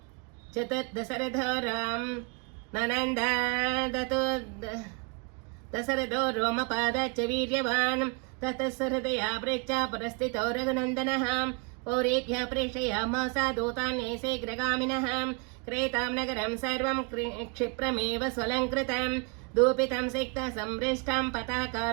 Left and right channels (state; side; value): quieter; left; 33.6 dB